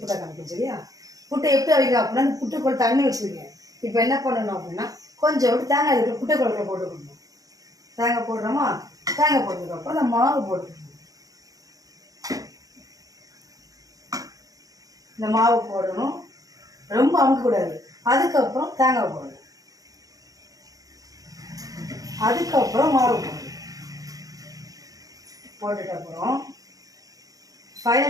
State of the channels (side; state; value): left; late; 0.17 ms